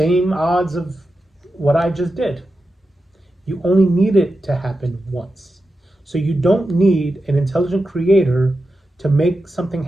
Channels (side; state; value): both; normal; correlation 0.90